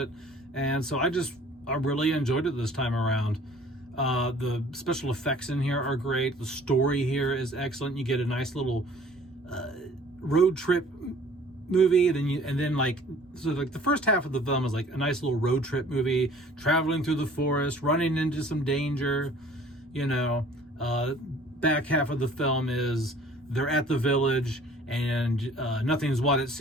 And so I really enjoyed it this time around. The special effects in here are great. The story here is excellent. You get a nice little road trip movie, and then the first half of the film is like a nice little road trip movie, traveling through the forest, running into some danger, back half of the film is they're at the village and nothing's what it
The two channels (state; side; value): normal; both; correlation 0.52